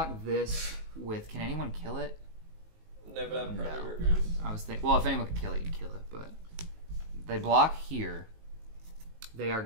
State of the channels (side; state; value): left; late; 19 ms